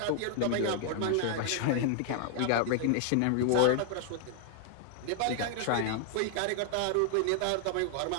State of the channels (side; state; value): both; different; correlation 0.00